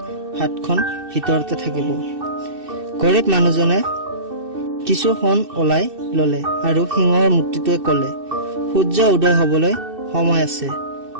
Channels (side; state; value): left; late; 2.6 ms